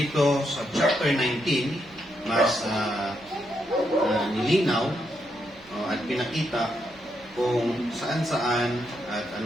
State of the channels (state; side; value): noise; right; hum, 26 dB below the sound